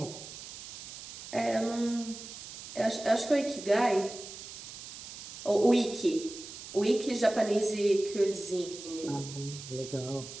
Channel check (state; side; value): noise; right; hiss, 12 dB below the sound